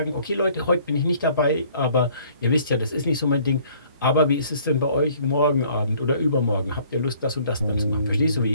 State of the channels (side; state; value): both; inverted; correlation -0.58